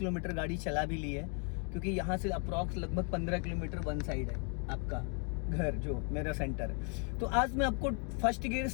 गाड़ी चला भी ली है, क्योंकि यहाँ से अप्रॉक्स लगभग 15 किलोमीटर वन साइड है आपका घर, जो मेरा सेंटर है। तो आज मैं आपको first gear,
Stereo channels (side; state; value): right; quieter; 39.5 dB